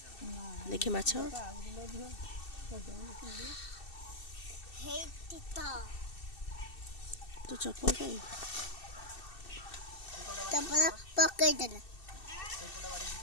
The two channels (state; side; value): late; right; 2.7 ms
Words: देखि माछ तो चप्पल कहीं चप्पल पकड़ देना